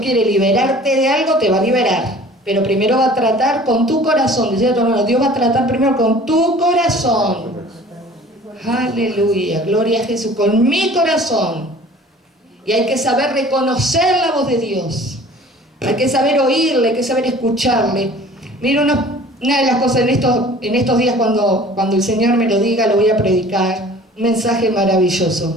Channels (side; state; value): both; normal; correlation 0.48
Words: liberarte de algo, te va a liberar. Pero primero va a tratar con tu corazón. Decía tu hermano, Dios va a tratar primero con tu corazón. Aleluya, gloria a Jesús, con mi corazón. Y hay que saber reconocer la voz de Dios. Hay que saber oírle, hay que saber escucharle. Mira, una de las cosas en estos días cuando el Señor me lo diga, lo voy a predicar. Un mensaje